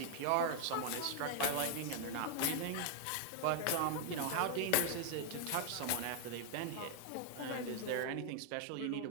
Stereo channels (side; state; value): both; different; correlation 0.00